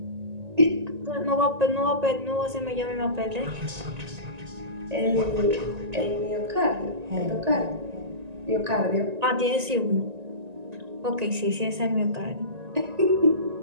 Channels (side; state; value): left; late; 1.9 ms